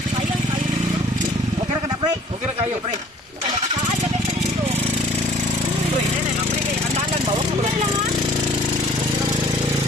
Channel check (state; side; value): normal; both; correlation 0.53